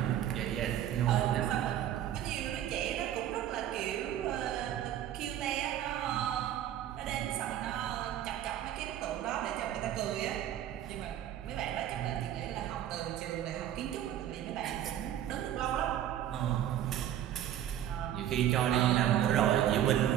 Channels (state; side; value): quieter; left; 11.3 dB